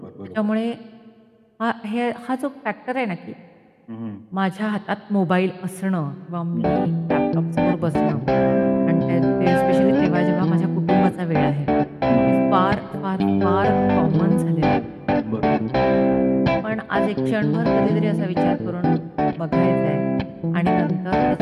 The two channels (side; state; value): both; identical; correlation 1.00